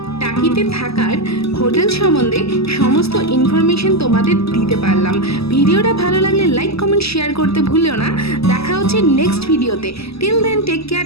টাকিতে থাকার হোটেল সম্বন্ধে সমস্ত ইনফরমেশন তোমাদের দিতে পারলাম। ভিডিওটা ভালো লাগলে লাইক, কমেন্ট, শেয়ার করতে ভুলিও না। দেখা হচ্ছে নেক্সট ভিডিওতে। Till then, take care,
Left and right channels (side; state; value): right; late; 0.78 ms